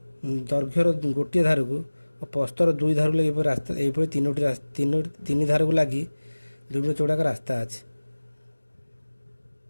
ଗୋଟିଏ ଧାରକୁ ଓ ପ୍ରସ୍ଥର 2 ଧାରକୁ ଲାଗି ଏହିପରି 3 ଧାରକୁ ଲାଗି 2 ମିଟର ଚଉଡ଼ା ଏକ ରାସ୍ତା ଅଛି।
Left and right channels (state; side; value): inverted; both; correlation -1.00